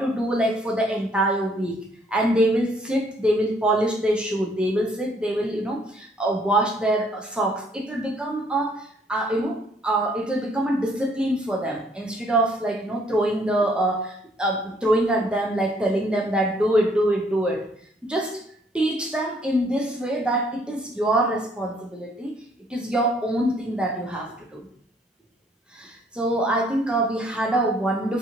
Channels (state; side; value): normal; both; correlation 0.64